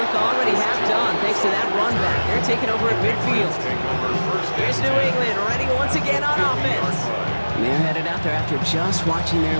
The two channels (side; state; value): both; inverted; correlation -1.00